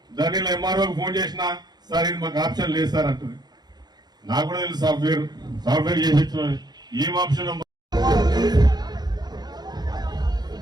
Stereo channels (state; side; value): late; left; 0.20 ms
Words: దానిలో MROకి ఫోన్ చేసినా సార్ ఇది మాకు ఆప్షన్ లేదు సార్ అంటుంది. నాకు కూడా తెలుసు సాఫ్ట్వేర్ చేసి ఏం ఆప్షన్